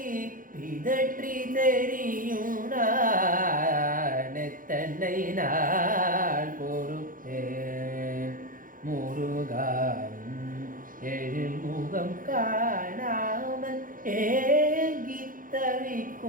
பிதற்றி தெரியும் நான் எத்தனை நாள் பொறுப்பேன் முருகாவும் எழில் முகம் காணாமல் ஏங்கித்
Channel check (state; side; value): late; left; 0.40 ms